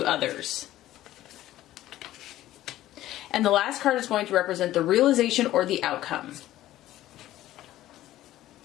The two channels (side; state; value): right; quieter; 14.5 dB